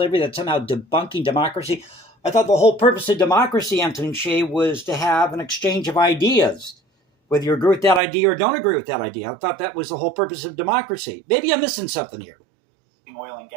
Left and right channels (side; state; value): left; drops out; at 8.0 s